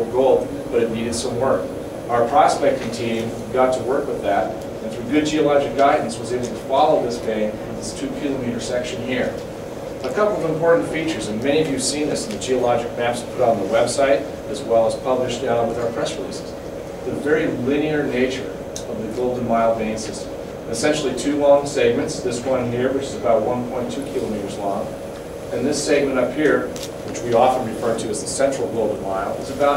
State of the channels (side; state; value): both; identical; correlation 1.00